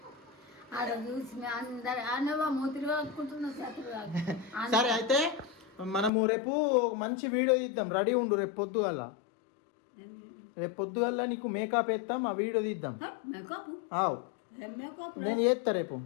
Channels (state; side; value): drops out; right; at 6.1 s